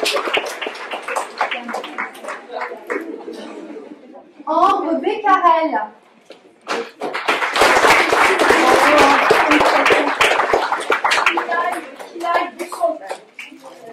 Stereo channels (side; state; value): both; identical; correlation 1.00